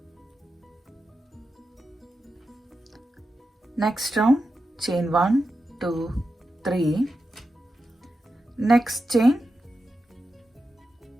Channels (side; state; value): both; normal; correlation 0.89